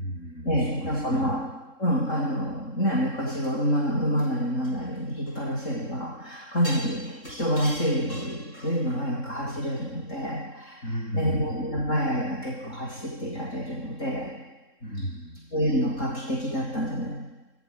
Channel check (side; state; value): right; late; 3.7 ms